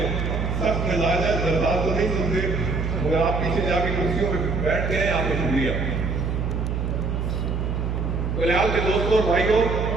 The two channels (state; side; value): noise; right; hum, 1 dB below the sound